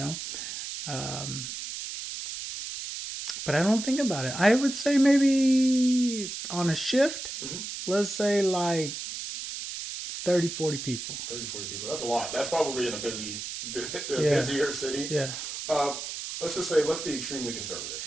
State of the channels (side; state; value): right; noise; hiss, 7 dB below the sound